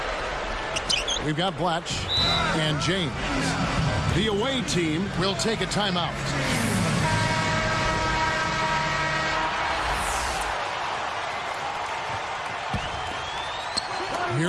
We've got Blatch and James. The away team will take a timeout.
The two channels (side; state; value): both; identical; correlation 1.00